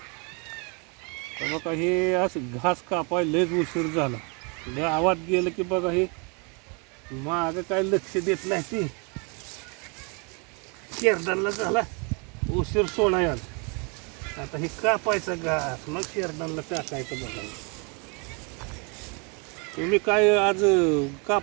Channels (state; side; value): quieter; left; 33.6 dB